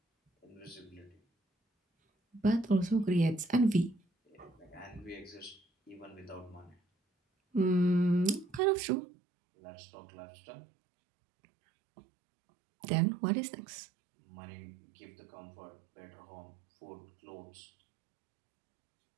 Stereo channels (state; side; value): drops out; left; at 8.6 s